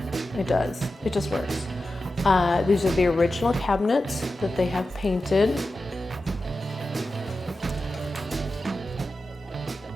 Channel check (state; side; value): normal; both; correlation 0.92